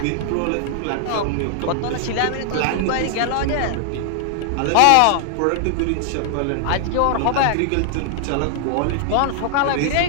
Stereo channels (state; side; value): different; both; correlation 0.00